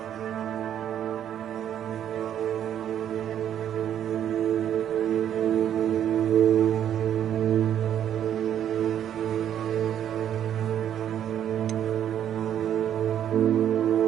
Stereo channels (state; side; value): quieter; left; 10.1 dB